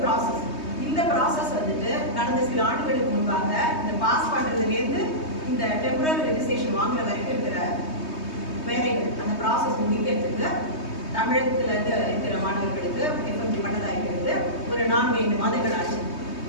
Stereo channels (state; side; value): late; right; 3.2 ms